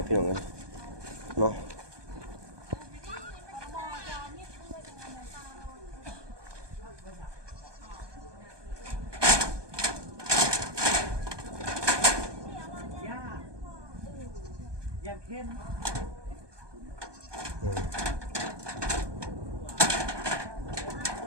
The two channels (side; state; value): left; late; 1.2 ms